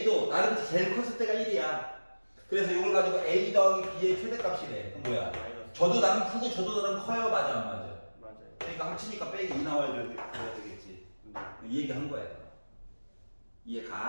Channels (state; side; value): inverted; both; correlation -1.00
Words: 나름 제일 컸을 때가 1이야. 그래서 이걸 가지고 a 더하기 b의 최대값이래. 그럼 뭐야? 마이너스. 저도 나름 크고 저도 나름 커요. 맞아 안 맞아? 맞아요. 그러니까 합치니까 빼기 2 나와야 되겠지. 네. 이 얘기 한 거야. 이해